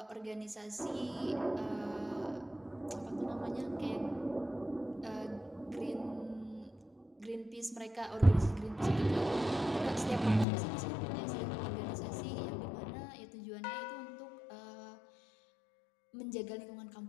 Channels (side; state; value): right; drops out; at 10.5 s